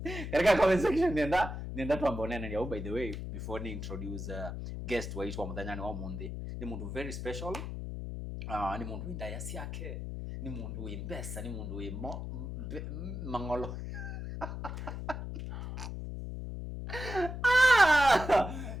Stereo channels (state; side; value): noise; left; hum, 6 dB below the sound